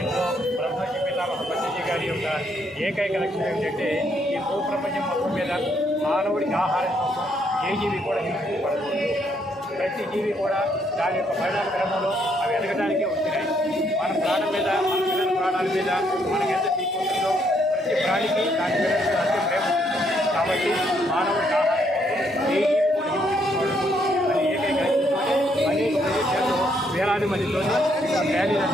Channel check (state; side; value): normal; both; correlation 0.72